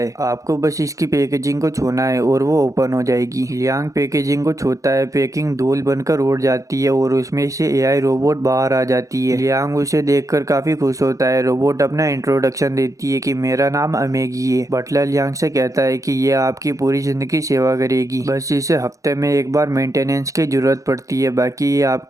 आपको बस इसकी पैकेजिंग को छूना है और वो ओपन हो जाएगी। लियांग पैकेजिंग को छूता है, पैकिंग धूल बनकर उड़ जाती है और उसमें से एआई रोबोट बाहर आ जाती है। लियांग उसे देखकर काफी खुश होता है। रोबोट अपना इंट्रोडक्शन देती है कि मेरा नाम अमेगी है। बटलर लियांग से कहता है कि ये आपकी पूरी जिंदगी सेवा करेगी, बस इसे हफ्ते में एक बार मेंटेनेंस की जरूरत पड़ती है, बाकी ये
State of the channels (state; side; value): late; left; 0.16 ms